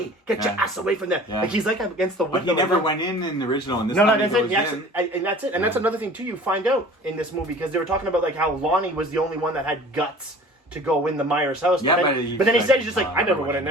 get your ass away from there!" Yeah. Like he's like against the window. But he never went in the original. And this that's it. And that's it. And that's another thing too. You find out in this movie because they were talking about like how Lonnie was the only one that had guts to go in the Myers house. Yeah, but then he said he's just like, I never went in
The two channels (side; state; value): both; normal; correlation 0.44